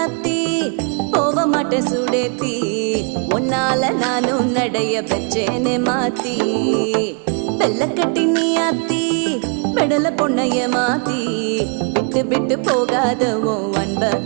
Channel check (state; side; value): quieter; left; 39.9 dB